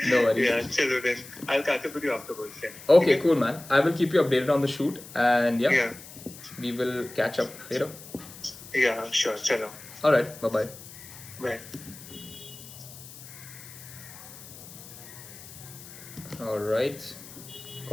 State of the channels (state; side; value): noise; left; hiss, 16 dB below the sound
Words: No worries. Yeah, chalo then. I'll catch up with you afterwards. Yeah. Okay, cool, man. I will keep you updated on the shoot, and yeah, we will catch up later. Yeah, sure. Chalo. All right. Bye-bye. Bye. All right.